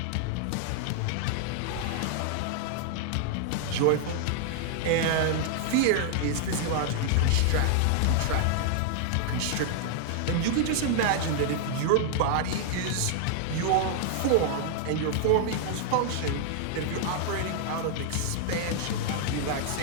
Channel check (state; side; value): different; both; correlation 0.00